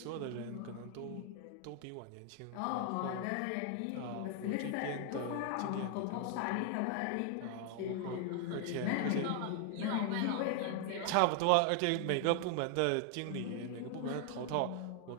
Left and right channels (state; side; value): different; both; correlation 0.00